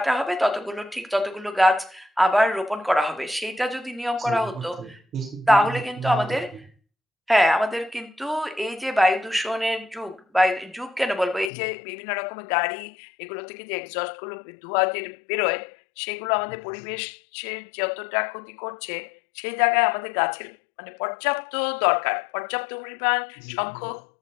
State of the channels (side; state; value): right; drops out; at 11.5 s